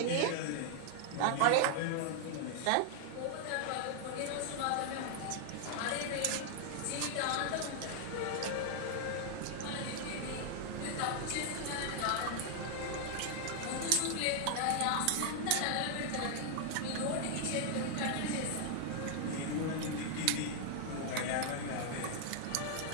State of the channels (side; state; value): both; different; correlation 0.00